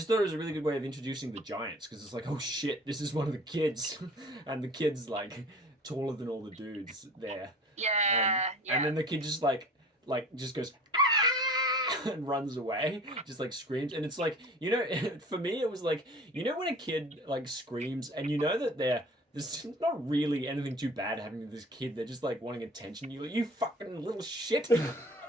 thought it was a really good way of introducing the giants because it's like, oh shit, this is one of the kids, and the kid's like taller than all the dudes there. Yeah, And then the kid just like just goes "Ah!" and runs away, just like screams, and it's like, you know, for me it was like, you know, when a kid like screams and you know that there's not really anything too bad happening to this kid, they're just like wanting attention. You're like, you fucking little shit.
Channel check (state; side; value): normal; both; correlation 0.44